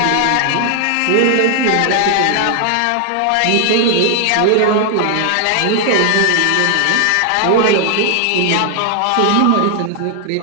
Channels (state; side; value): different; both; correlation 0.00